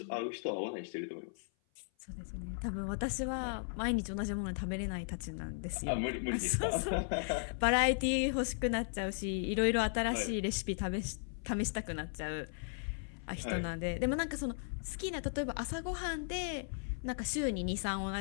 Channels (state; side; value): silent; right; 53 dB below the other